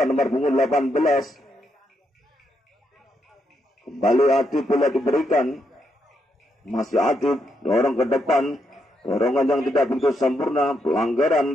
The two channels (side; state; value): both; normal; correlation 0.79